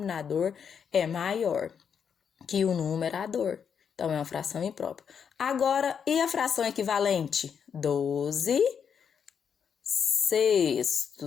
é maior que o numerador. Então, é uma fração imprópria. Agora, e a fração equivalente?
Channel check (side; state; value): right; quieter; 7.2 dB